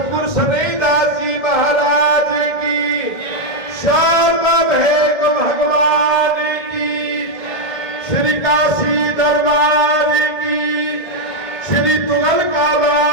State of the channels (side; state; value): right; late; 1.6 ms